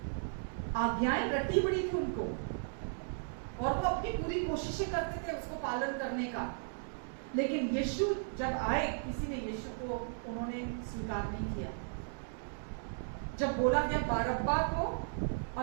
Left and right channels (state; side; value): silent; left; digital silence